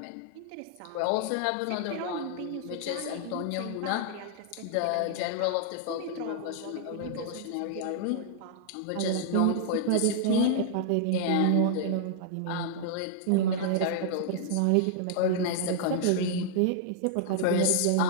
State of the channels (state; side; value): different; both; correlation -0.01